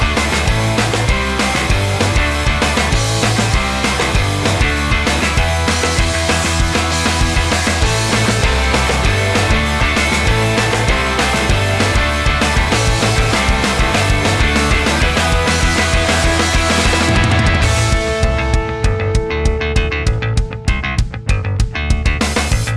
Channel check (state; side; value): identical; both; correlation 1.00